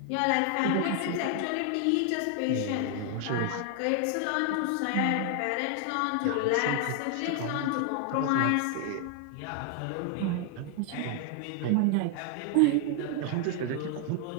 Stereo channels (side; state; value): both; different; correlation 0.00